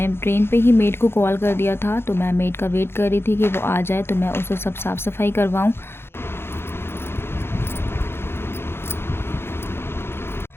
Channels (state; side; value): late; right; 0.11 ms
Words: ट्रेन पे ही मेड को कॉल कर दिया था, तो मैं मेड का वेट कर रही थी कि वो आ जाए तो मैं उसे सब साफ़ सफाई करवाऊं।